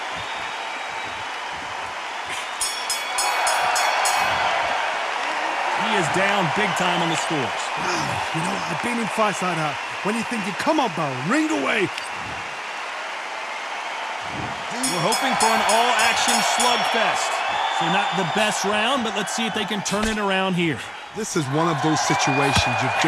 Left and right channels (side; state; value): both; identical; correlation 1.00